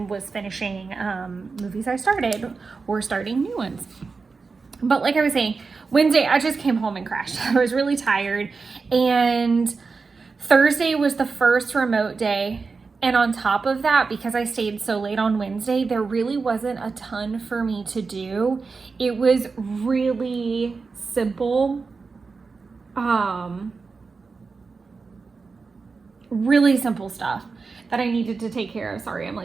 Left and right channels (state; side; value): quieter; left; 4.5 dB